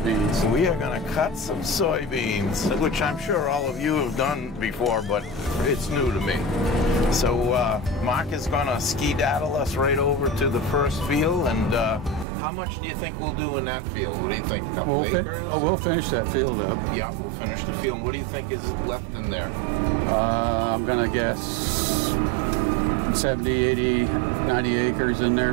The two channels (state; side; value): drops out; left; at 12.2 s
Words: We are gonna cut some soybeans, which I'm sure all of you have done before, but it's new to me. So Marc is gonna ski-daddle us right over to the first field, and how much do you think we'll do in that field? What do you think? A couple acres? Oh, we'll finish that field up. Yeah, we'll finish the field. What do you think is left in there? I'm gonna guess 70, 80, 90 acres in